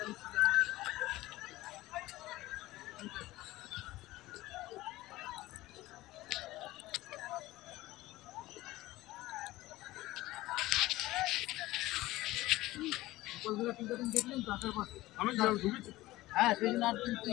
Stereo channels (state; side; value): quieter; right; 17.7 dB